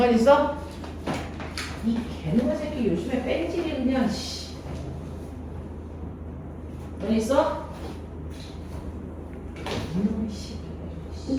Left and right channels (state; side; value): identical; both; correlation 1.00